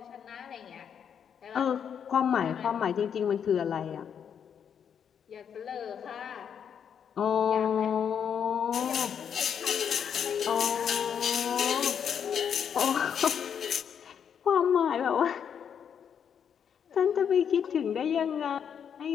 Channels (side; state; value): right; quieter; 7.9 dB